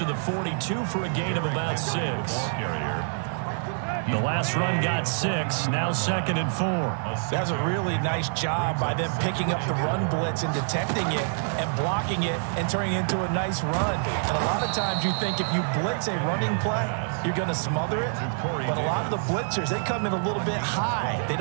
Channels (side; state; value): left; silent; digital silence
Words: the 42 for a gain of about 6. The last run got 6, now 2nd and 4. That's a really nice job by them picking up the run blitz and detecting it and blocking it and turning it into a nice run. And a lot of times you think if you blitz a running play, you're going to smother it. But a lot of the blitzers, they come in a little bit high. They